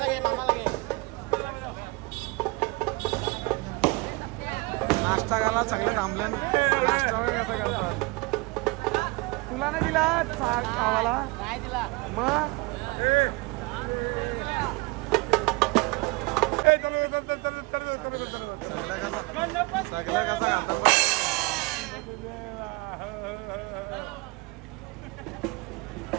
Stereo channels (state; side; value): quieter; left; 25.6 dB